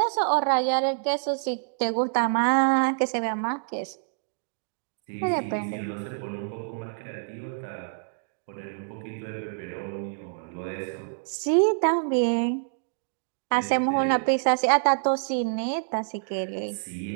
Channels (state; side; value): silent; left; digital silence